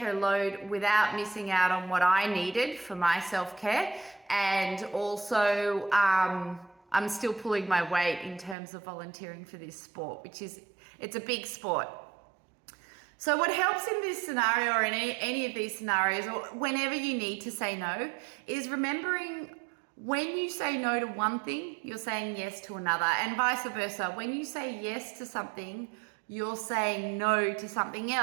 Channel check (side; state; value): left; drops out; at 8.6 s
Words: load without missing out on what I needed for my self-care. And also, I'm still pulling my weight in terms of volunteering for this sport, it's a big sport. So what helps in this scenario, or in any of these scenarios, or whenever you need to say no, is remembering when you say no to one thing, you're saying yes to another, and vice versa. When you say yes to something, you're saying no to something